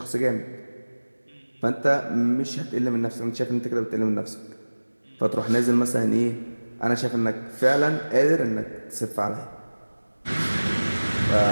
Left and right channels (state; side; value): inverted; both; correlation -1.00